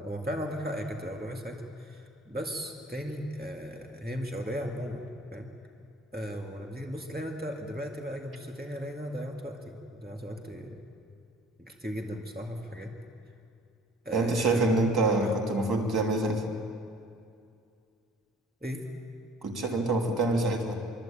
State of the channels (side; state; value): both; normal; correlation 0.52